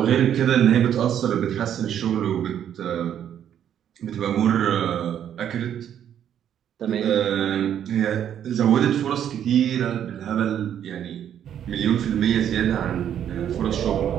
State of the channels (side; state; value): left; quieter; 9.7 dB